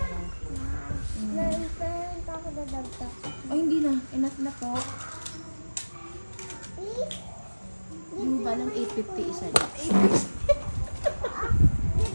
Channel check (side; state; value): both; inverted; correlation -1.00